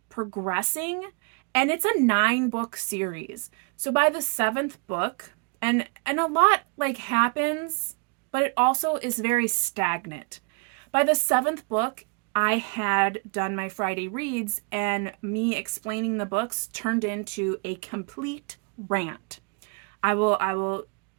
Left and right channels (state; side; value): quieter; left; 35.8 dB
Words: progressing. And it's a 9-book series, so by the 7th book, and a lot like happens, but it also is very stagnant. By the 7th book, I had done my Friday reads, and me explaining the books turned into a complete rant. I will